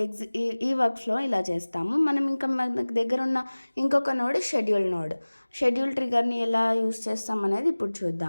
ఈ వర్క్ ఫ్లో ఇలా చేస్తాము. మనం ఇంకా మనకు దగ్గర ఉన్న ఇంకొక నోడ్ షెడ్యూల్ ట్రిగర్ని ఎలా యూస్ చేస్తాం అనేది ఇప్పుడు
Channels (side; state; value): both; inverted; correlation -1.00